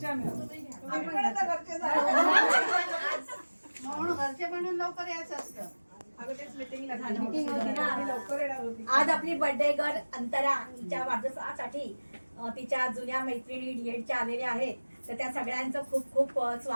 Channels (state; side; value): inverted; both; correlation -1.00